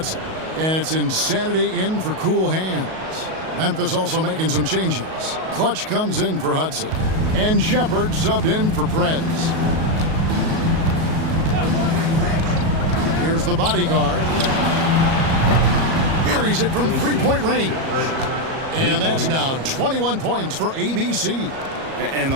And it's Insanity in for Cool Hands. Memphis also making some changes. Clutch comes in for Hudson. And Shepard subbed in for Prez. Here's the bodyguard. Buries it from three-point range. And that's now 21 points for ABC. And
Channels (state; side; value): late; left; 37 ms